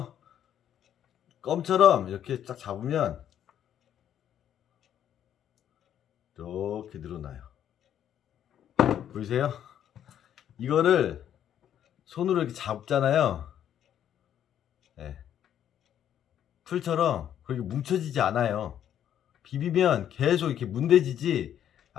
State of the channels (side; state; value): right; quieter; 10.1 dB